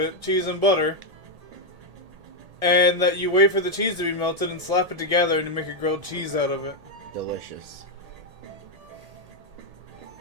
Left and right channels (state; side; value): late; left; 1.8 ms